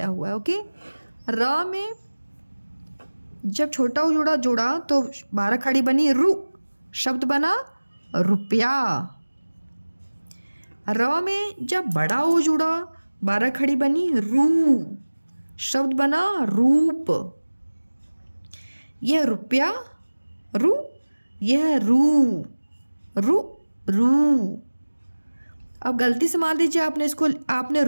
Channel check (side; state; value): both; inverted; correlation -1.00